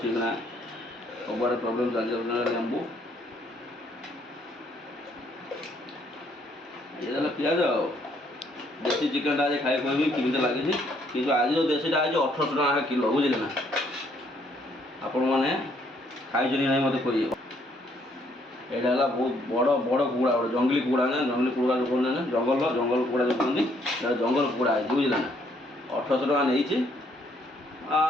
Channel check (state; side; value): normal; both; correlation 0.68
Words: ନା ସବୁଆଡ଼େ ପ୍ରୋବ୍ଲେମ୍ ଚାଲିଛି ଲେମ୍ବୁ ଇଏ ଦେଲା ପିଆଜ ଆଉ ଦେଶୀ ଚିକେନ୍ଟା ଆଜି ଖାଇ କହିବି କେମିତି ଲାଗିଛି କିନ୍ତୁ ଆଜି ଯେଉଁ ଦେଶୀଟା ଆଜି 1800 ଟଙ୍କା କିଲୋ ବୁଝିଲେ ନା ଆପଣମାନେ ଖାଇଛନ୍ତି ନାହିଁ ମୋତେ କହିବେ। ଏଇଟା ହେଲା ବହୁତ ବଡ଼ ବଡ଼ କୁକୁଡ଼ା ଗୋଟେ ଜଙ୍ଗଲି କୁକୁଡ଼ା ନା ଜଙ୍ଗଲି କୁକୁଡ଼ା ଯେଉଁ କୁହନ୍ତି ନା ଜଙ୍ଗଲ କୁକୁଡ଼ା ଯେଉଁ କୁହନ୍ତି ଏଇଟା ଜଙ୍ଗଲ କୁକୁଡ଼ା ହେଇଛି ବୁଝିଲେ ନା 1800 ଟଙ୍କା ନେଇଛି